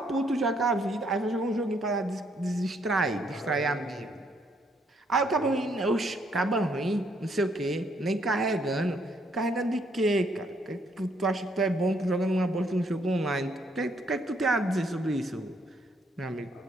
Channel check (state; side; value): normal; both; correlation 0.70